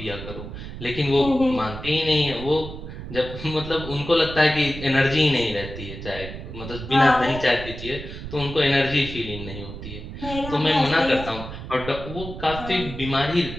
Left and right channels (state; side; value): noise; right; rumble, 10 dB below the sound